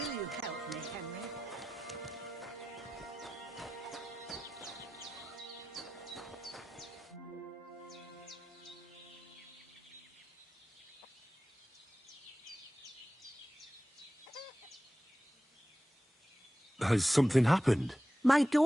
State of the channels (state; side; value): normal; both; correlation 0.93